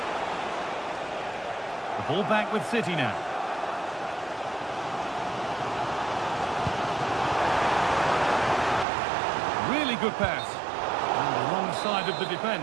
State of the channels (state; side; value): drops out; left; at 8.8 s